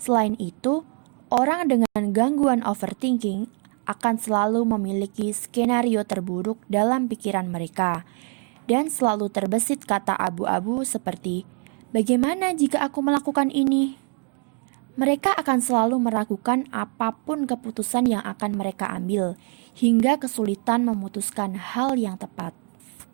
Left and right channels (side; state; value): left; quieter; 37.3 dB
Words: itu, orang dengan gangguan overthinking akan selalu memiliki skenario terburuk dalam pikiran mereka dan selalu terbesit kata abu-abu seperti, "Bagaimana jika aku melakukan ini?" Mereka akan selalu meragukan apapun keputusan yang akan mereka ambil, hingga kesulitan memutuskan hal yang tepat.